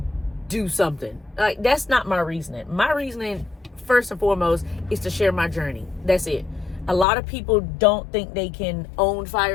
do something. Like, that's not my reasoning. My reasoning, first and foremost, is to share my journey. That's it. A lot of people don't think they can own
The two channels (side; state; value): right; drops out; at 7.1 s